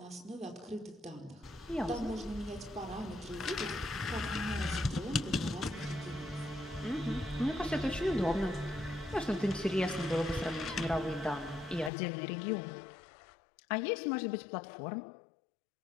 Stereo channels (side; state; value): right; drops out; at 11.9 s